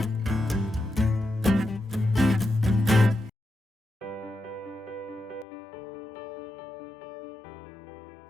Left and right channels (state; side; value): drops out; right; at 5.5 s